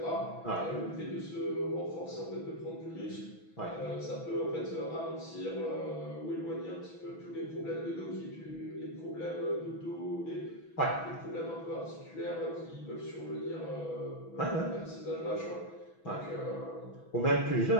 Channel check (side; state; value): right; late; 6.1 ms